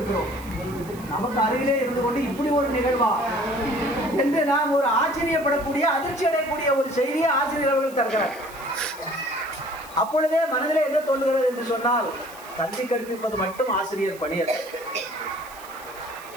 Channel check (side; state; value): right; noise; hiss, 20 dB below the sound